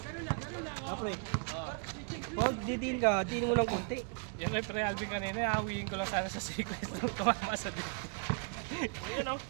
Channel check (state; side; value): quieter; left; 38.7 dB